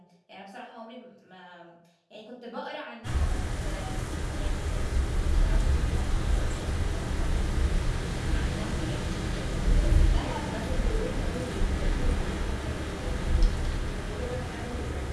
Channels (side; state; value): both; identical; correlation 1.00